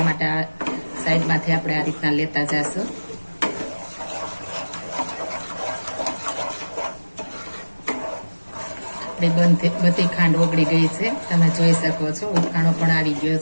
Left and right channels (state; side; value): inverted; both; correlation -1.00